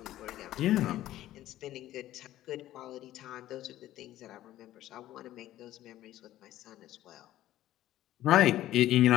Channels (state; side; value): quieter; right; 14.0 dB